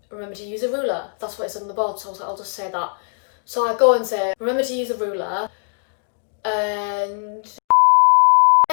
remember to use a ruler. That's what it said on the board, so I was like, I'll just say that. So I go and say, remember to use a ruler, and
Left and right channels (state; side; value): silent; right; digital silence